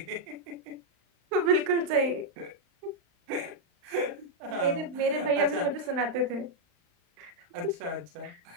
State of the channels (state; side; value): late; left; 35 ms